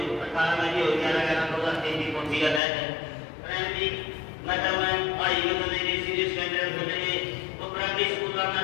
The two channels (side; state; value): right; drops out; at 2.6 s